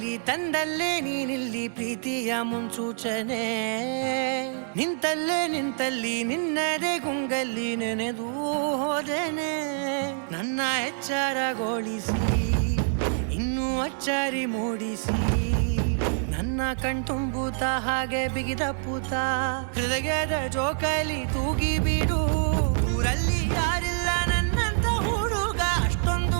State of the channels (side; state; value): left; silent; digital silence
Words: ತಂದಲ್ಲೇ ನೀನಿಲ್ಲಿ ಪ್ರೀತಿಯ ಮುನ್ಸೂಚನೆ, ನಿಂತಲ್ಲಿ ನಿನ್ನದೇ ಗುಂಗಲ್ಲಿ ನೆನೆದು ಹೋದೆನೆ. ನನ್ನ ಎಚ್ಚರಗೊಳಿಸಿ ಇನ್ನೂ ಅಚ್ಚರಿ ಮೂಡಿಸಿ, ನನ್ನ ಕಣ್ತುಂಬುತ್ತ ಹಾಗೆ ಬಿಗಿದಪ್ಪುತ್ತ ಹೃದಯದ ಜೋಕಾಲಿ ತೂಗಿ ಬಿಡು. ಊರಲ್ಲಿ ಯಾರಿಲ್ಲ ನನ್ನಂತ ಹುಡುಗ,